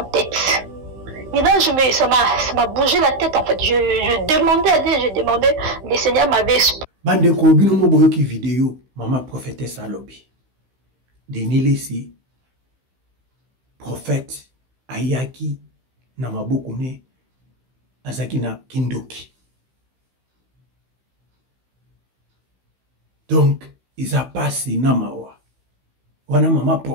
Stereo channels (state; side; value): late; left; 15 ms